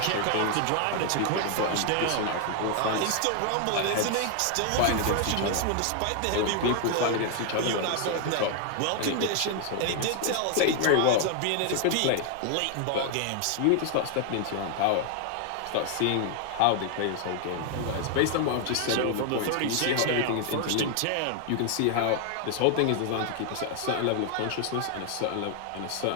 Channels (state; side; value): different; both; correlation 0.00